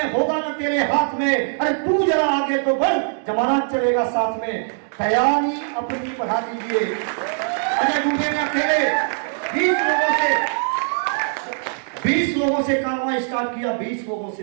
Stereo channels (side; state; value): left; silent; digital silence